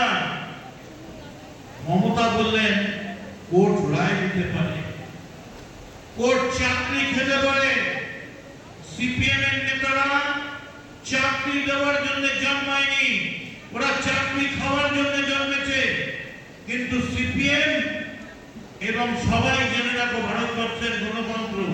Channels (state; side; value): identical; both; correlation 1.00